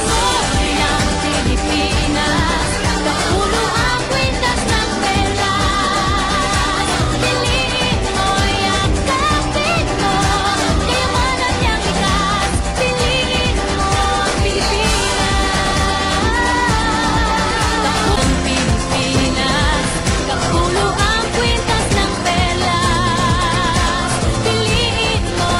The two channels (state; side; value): identical; both; correlation 1.00